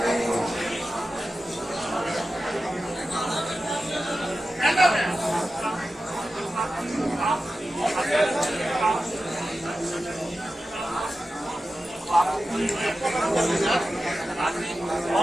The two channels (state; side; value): normal; both; correlation 0.93